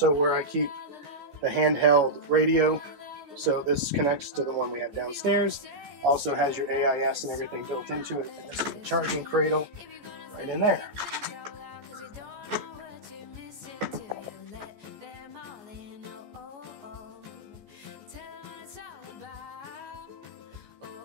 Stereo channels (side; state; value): left; late; 14 ms